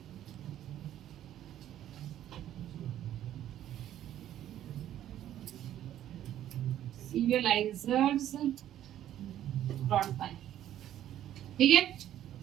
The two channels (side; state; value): left; quieter; 11.8 dB